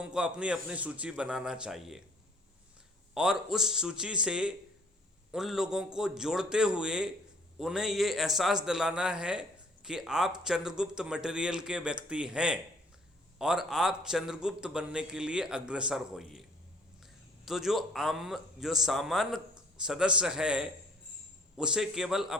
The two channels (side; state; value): both; normal; correlation 0.56